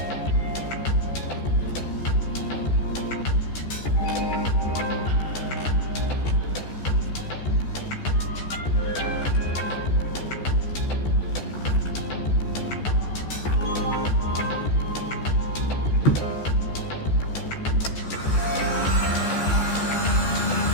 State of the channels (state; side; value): late; right; 14 ms